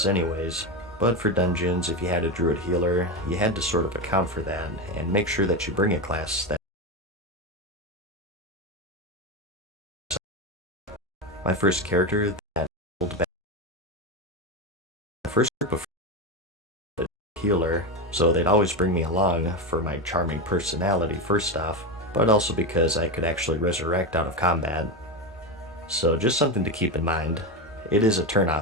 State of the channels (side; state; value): both; normal; correlation 0.16